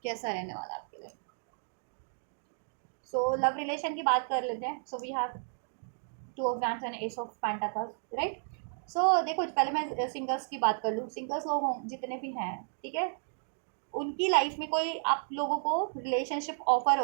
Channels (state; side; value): silent; left; digital silence